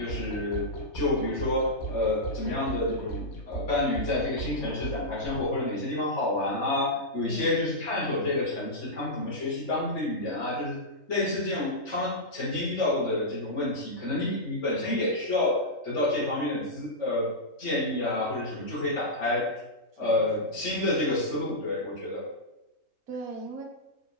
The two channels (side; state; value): right; late; 3.2 ms